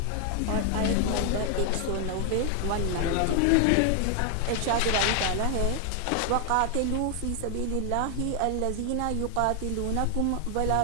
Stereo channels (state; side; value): different; both; correlation 0.00